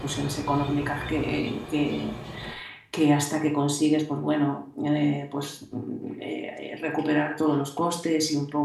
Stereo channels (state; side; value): identical; both; correlation 1.00